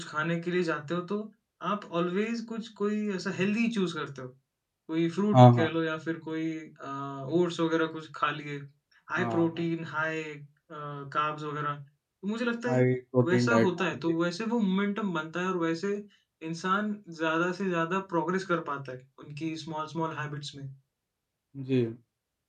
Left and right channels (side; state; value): both; identical; correlation 1.00